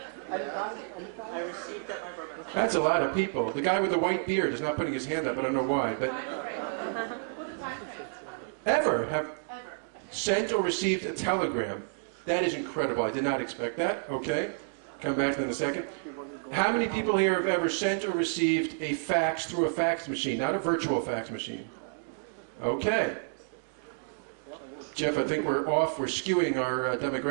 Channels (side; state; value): left; silent; digital silence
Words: I received that. That's a lot of people. The guy with the white beard is not putting his hand up. I don't know why, but ever have sent or received a telegram? That is incredible. I did not expect that. Okay, come back to that in a second. How many people here have ever sent or received a fax through a fax machine, not a virtual fax machine? Okay. Jeff, I think we're off. We're skewing our